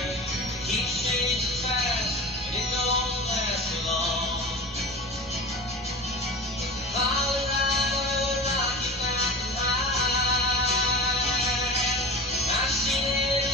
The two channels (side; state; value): both; normal; correlation 0.32